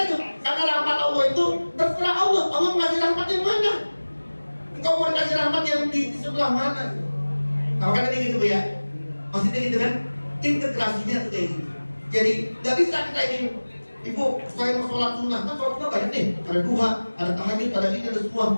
itu. Karena rahmat Allah itu terserah Allah. Allah ngasih rahmat yang mana? Engkau mau kasih rahmat yang di sebelah mana? Nah, makanya tadi gitu ya. Maksudnya gitu kan? Integrasinya tuh kayak gitu. Jadi nggak bisa kita ini. Ibu, saya mau sholat sunnah, kan sholat sunnah banyak nih. Ada duha, ada tahajud, ada ini, ada semua.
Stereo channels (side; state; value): both; inverted; correlation -1.00